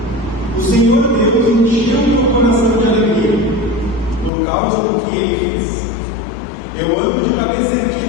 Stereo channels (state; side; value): drops out; right; at 4.3 s